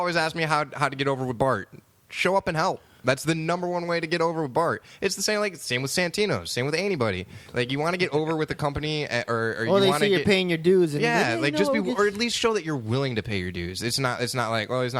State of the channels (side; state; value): both; identical; correlation 1.00